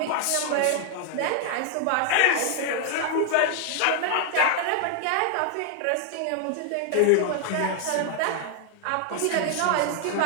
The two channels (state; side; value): different; both; correlation 0.00